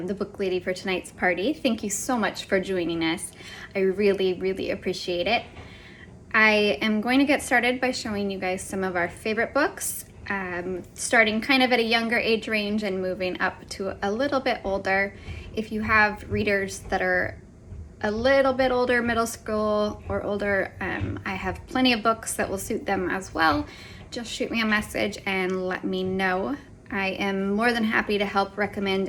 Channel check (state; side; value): identical; both; correlation 1.00